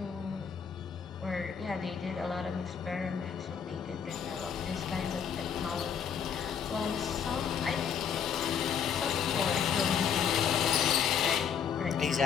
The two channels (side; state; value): right; quieter; 7.6 dB